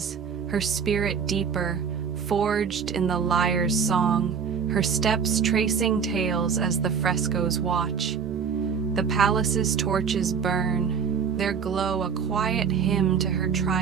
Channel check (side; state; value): left; quieter; 6.6 dB